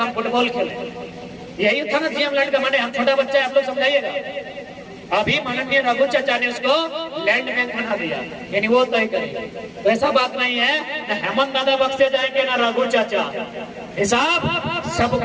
हम फुटबॉल खेले। यही था ना जीएम लैंड का माने। हम छोटा बच्चा है, आप लोग समझाइएगा। अभी माननीय रघु चाचा ने उसको लैंड बैंक बना दिया, यानी वो तय करेगा। तो ऐसा बात नहीं है न हेमंत दादा बख्शे जाएंगे ना रघु चाचा। हिसाब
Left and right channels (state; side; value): identical; both; correlation 1.00